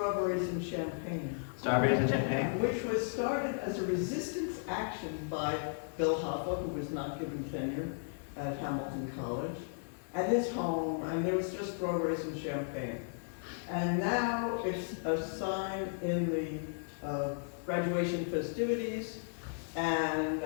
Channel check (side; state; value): right; silent; digital silence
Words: and champagne, Strawberries and champagne? which was started as a resistance action by Bill Hoffa, who was not given tenure at Hamilton College, at his home, and there was just strawberries and champagne. And now it's a sign in the graduation festivities, And